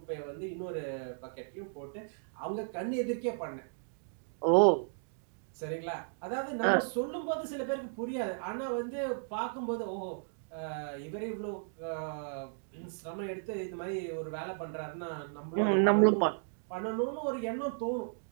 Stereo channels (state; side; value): silent; left; digital silence